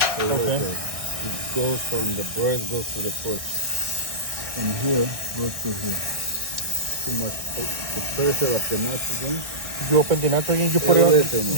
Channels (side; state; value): left; late; 1.6 ms